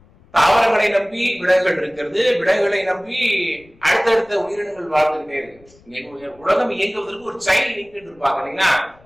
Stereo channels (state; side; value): noise; left; rumble, 28 dB below the sound